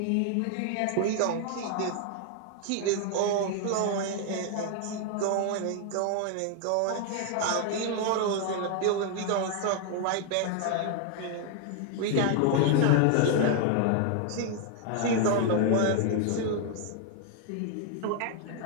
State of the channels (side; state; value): both; different; correlation 0.00